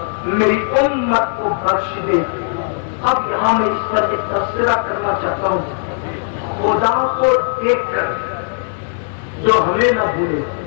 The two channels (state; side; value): silent; right; 65 dB below the other